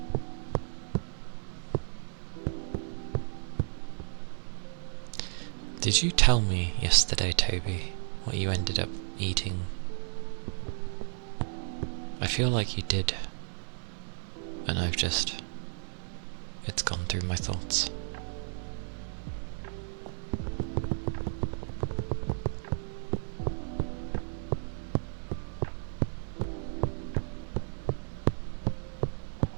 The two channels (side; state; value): left; silent; digital silence